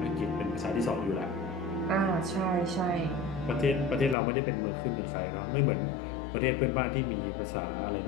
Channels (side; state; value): right; drops out; at 4.2 s